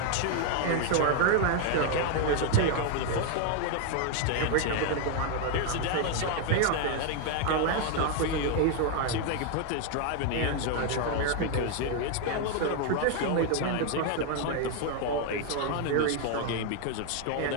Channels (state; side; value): different; both; correlation 0.01